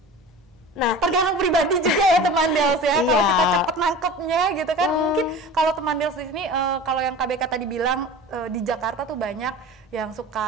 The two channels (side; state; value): both; normal; correlation 0.36